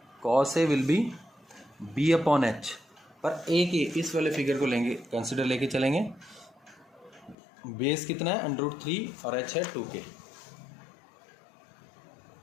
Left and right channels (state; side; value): drops out; right; at 7.4 s